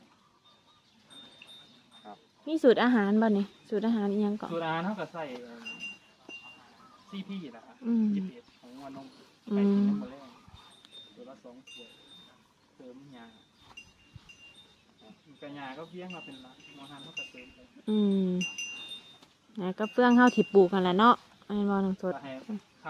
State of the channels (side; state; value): both; identical; correlation 1.00